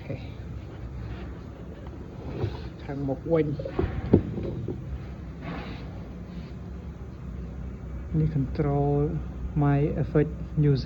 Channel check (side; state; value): both; identical; correlation 1.00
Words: ខេខាងមុខវិញនេះ control my effect